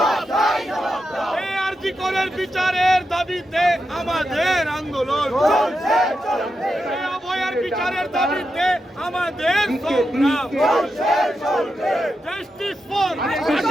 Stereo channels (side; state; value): both; normal; correlation 0.87